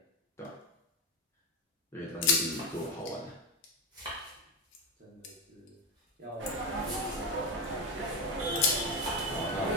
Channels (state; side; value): normal; both; correlation 0.12